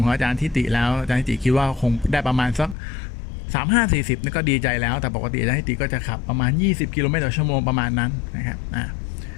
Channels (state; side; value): drops out; right; at 2.8 s